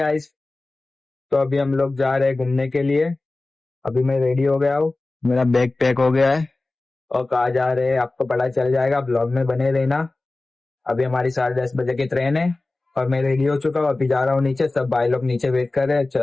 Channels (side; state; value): right; quieter; 3.1 dB